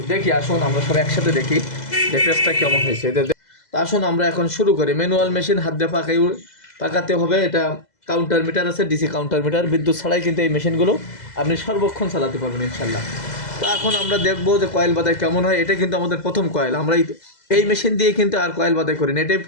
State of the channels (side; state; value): right; late; 2.0 ms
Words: দেখি আসুন আমরা সব একসাথে দেখি যে পেজটা কেমন হয়েছে। তো আসুন আমরা এখন শুরু করি। ম্যানুয়াল মেশিন, হাত দিয়ে পাকাতে হবে। এটা কাউন্টার মিটার আছে, ডিসি কাউন্টার মিটার, বিদ্যুৎ ছাড়াই কিন্তু এই মেশিনগুলো আপনি সর্বক্ষণ চালাতে পারবেন ইনশাল্লাহ। তো এখন আমরা দেখবো যে কয়েল বাদাই কেমন হয়। এটা কিন্তু আমাদের প্রথম কয়েল, আমরা এই মেশিন দিয়ে কিন্তু আর কয়েল বাদাই করি না, এটাই